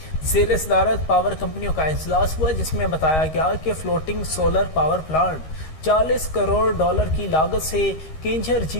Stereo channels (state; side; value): late; right; 13 ms